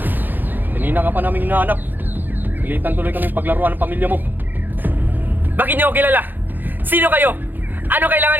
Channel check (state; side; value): late; left; 0.089 ms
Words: Kanina ka pa namin hinahanap. Pilitan tuloy kami paglaruan ng pamilya mo. Bakit niyo ako kilala? Sino kayo? Ano kailangan